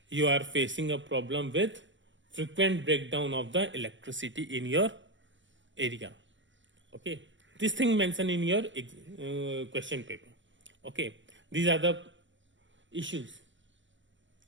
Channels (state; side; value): late; left; 0.55 ms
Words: you are facing a problem with frequent breakdown of the electricity in your area. Okay, this thing mentioned in your question paper. Okay, these are the issues.